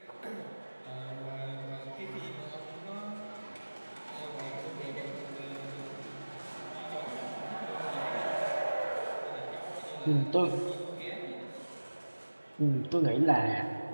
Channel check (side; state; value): both; inverted; correlation -1.00